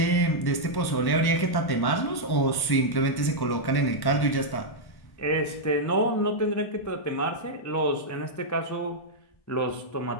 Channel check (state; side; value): late; right; 1.1 ms